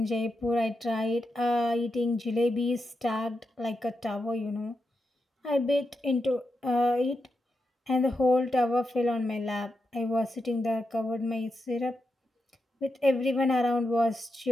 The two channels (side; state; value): both; normal; correlation 0.87